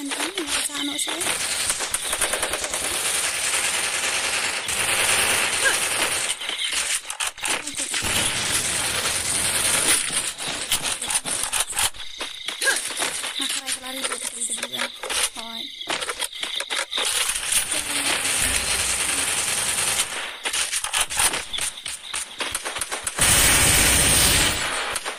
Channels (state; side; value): identical; both; correlation 1.00